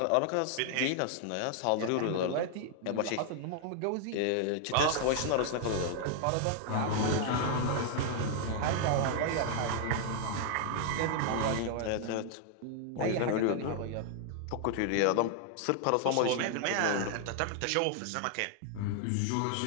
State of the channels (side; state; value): both; different; correlation 0.00